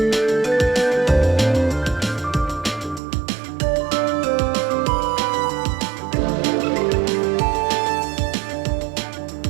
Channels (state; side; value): drops out; left; at 3.0 s